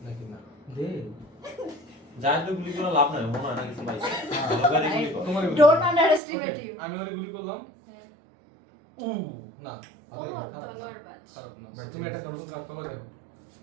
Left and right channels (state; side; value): drops out; left; at 6.2 s